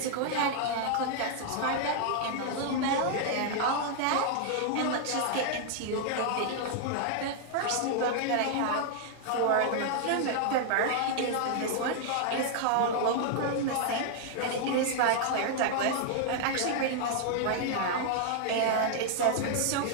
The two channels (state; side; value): different; both; correlation -0.01